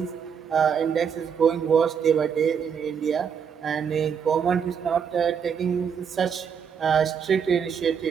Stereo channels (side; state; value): left; quieter; 7.1 dB